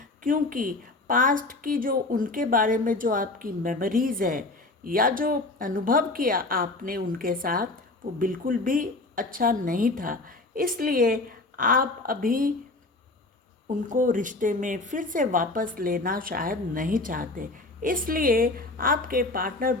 क्योंकि पास्ट की जो उनके बारे में जो आपकी मेमोरीज़ है या जो अनुभव किया आपने उनके साथ, वो बिल्कुल भी अच्छा नहीं था। इसलिए आप अभी उनको रिश्ते में फिर से वापस लेना शायद नहीं चाहते। इसलिए आपके पार्टनर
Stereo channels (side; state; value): right; quieter; 3.1 dB